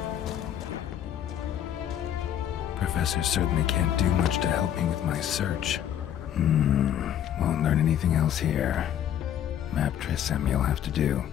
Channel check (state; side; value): quieter; right; 10.3 dB